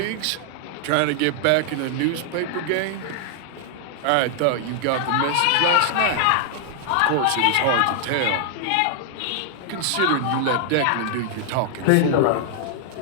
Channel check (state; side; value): different; both; correlation 0.00